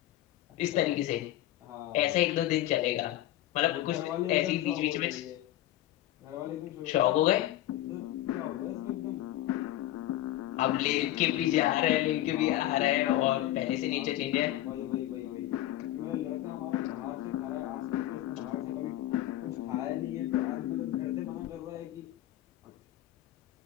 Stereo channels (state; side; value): quieter; right; 14.2 dB